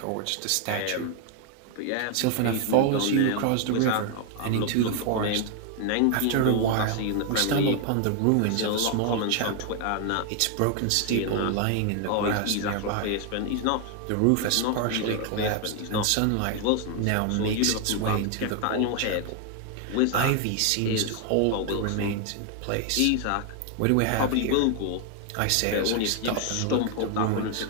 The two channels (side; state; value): both; different; correlation 0.00